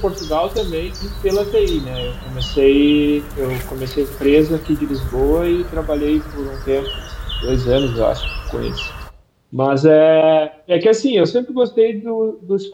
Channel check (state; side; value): identical; both; correlation 1.00